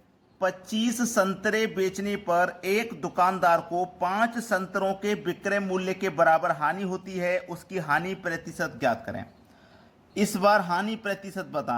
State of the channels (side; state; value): both; identical; correlation 1.00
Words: 25 संतरे बेचने पर एक दुकानदार को 5 संतरों के विक्रय मूल्य के बराबर हानि होती है, उसकी हानि प्रतिशत ज्ञात करें। इस बार हानि प्रतिशत